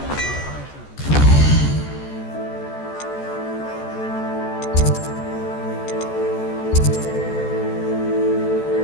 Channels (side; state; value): right; late; 14 ms